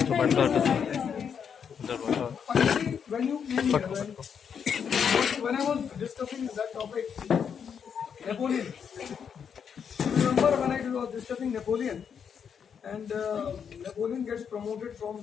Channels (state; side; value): quieter; right; 7.3 dB